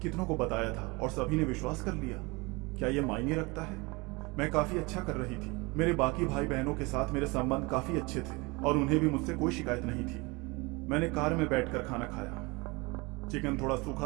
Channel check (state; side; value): quieter; left; 26.0 dB